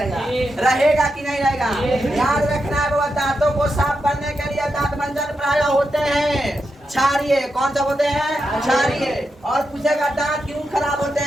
रहेगा कि नहीं रहेगा? याद रखना है बाबा दांतों को साफ करने के लिए दांतमंजन प्राय होते हैं क्षारीय। कौन सा होते हैं? क्षारीय। और पूछेगा दांत क्यों खराब होते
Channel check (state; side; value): normal; both; correlation 0.86